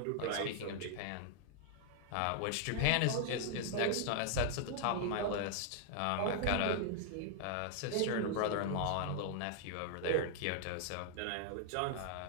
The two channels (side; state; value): both; different; correlation -0.01